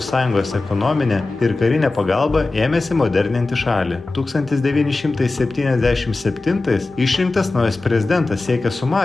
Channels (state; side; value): quieter; right; 3.3 dB